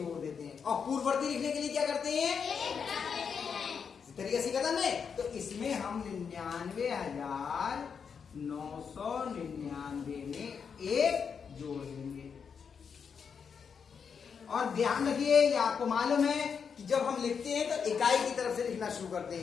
देते हैं। और पूर्ववर्ती लिखने के लिए क्या करते हैं? इस तरीके से करना है। तो इसमें हम 99,999 में एक जोड़ देंगे। और ध्यान रखिए, ये आपको मालूम है कि जब हम लिखते हैं तो इकाई की तरफ से लिखना शुरू करते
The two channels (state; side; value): quieter; right; 6.5 dB